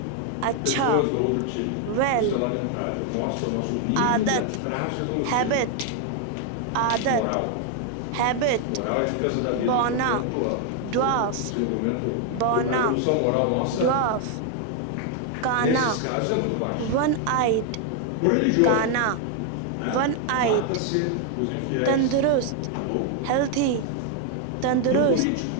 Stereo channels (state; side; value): different; both; correlation 0.00